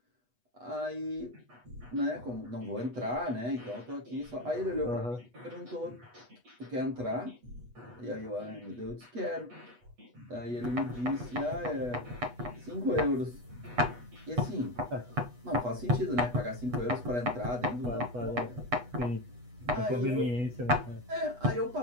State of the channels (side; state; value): left; late; 8.2 ms